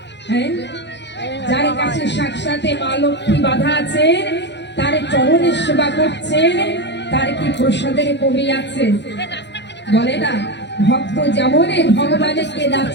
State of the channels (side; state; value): right; late; 0.51 ms